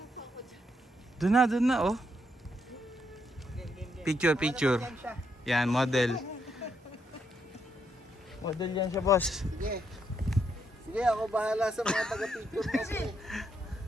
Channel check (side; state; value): both; normal; correlation 0.77